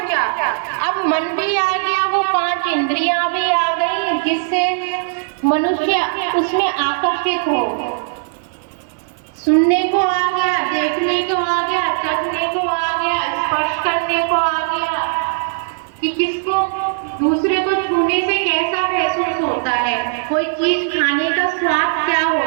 अब मन भी आ गया, वो 5 इंद्रियां भी आ गई, जिससे मनुष्य उसमें आकर्षित हो। सुनने को आ गया, देखने को आ गया, चखने को आ गया, स्पर्श करने को आ गया कि किसको दूसरे को छूने से कैसा महसूस होता है, कोई चीज खाने का स्वाद क्या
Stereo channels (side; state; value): left; silent; 59 dB below the other